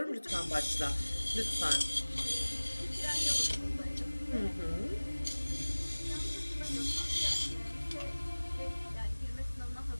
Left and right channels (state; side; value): inverted; both; correlation -1.00